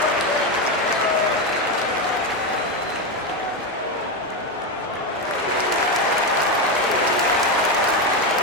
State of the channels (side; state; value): both; normal; correlation 0.11